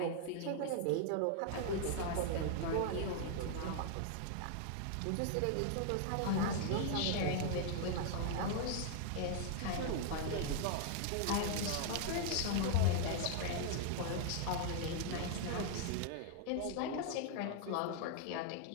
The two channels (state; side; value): different; both; correlation 0.00